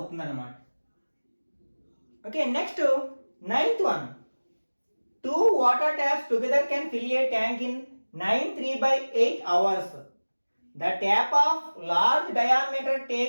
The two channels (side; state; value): both; inverted; correlation -1.00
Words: అన్నమాట. Okay, next 9th one. 2 water taps together can fill a tank in 9 3/8 hours. The tap of large diameter